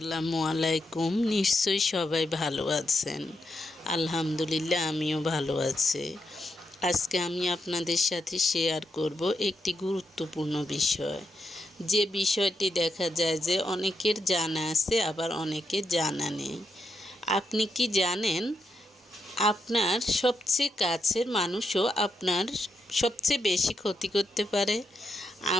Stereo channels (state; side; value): normal; both; correlation 0.82